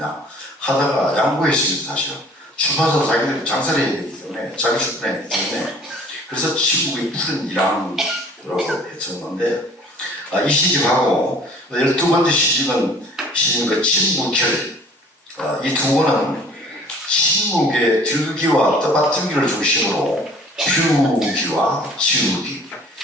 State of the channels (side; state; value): both; normal; correlation 0.51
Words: 하다가 양보했습니다. 사실은 출판사도 자기들이 장사를 해야 되기 때문에 자기 출판해야 되기 때문에 그래서 침묵의 푸른 1학이라고 했었는데 이 시집하고 12번째 시집은 침묵결. 이 두 권은 침묵의 들기와 떠받들기를 중심으로 피우기와 지우기,